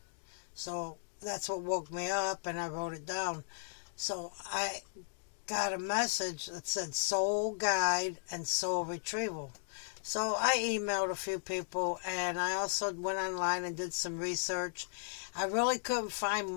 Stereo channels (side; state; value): right; silent; digital silence